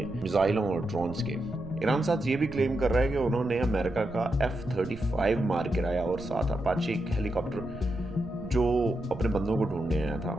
میزائلوں اور ڈرونز کے۔ ایران ساتھ یہ بھی کلیم کر رہا ہے کہ انہوں نے امریکہ کا F-35 مار گرایا اور ساتھ اپاچی ایک ہیلی کاپٹر جو اپنے بندوں کو ڈھونڈنے آیا تھا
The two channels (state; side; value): noise; right; rumble, 14 dB below the sound